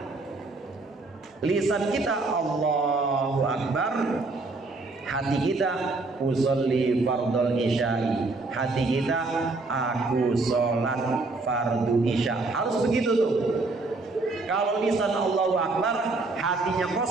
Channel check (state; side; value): quieter; left; 3.5 dB